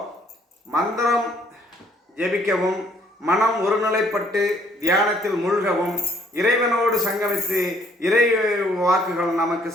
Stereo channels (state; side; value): normal; both; correlation 0.64